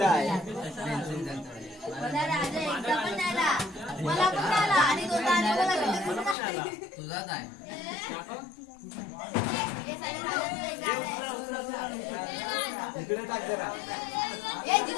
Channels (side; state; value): right; drops out; at 6.4 s